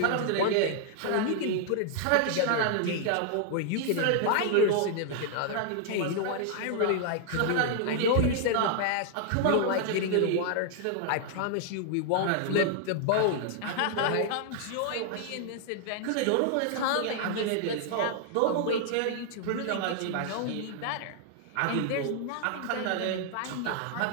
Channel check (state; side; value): different; both; correlation 0.00